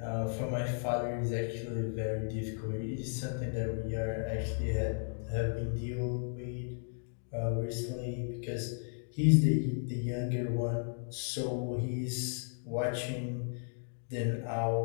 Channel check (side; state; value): right; silent; digital silence